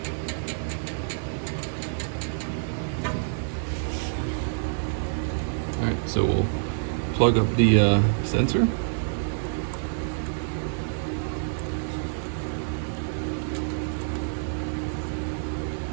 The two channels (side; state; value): left; silent; digital silence